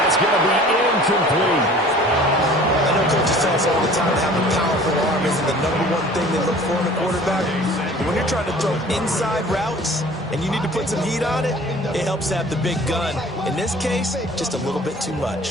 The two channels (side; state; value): both; normal; correlation 0.47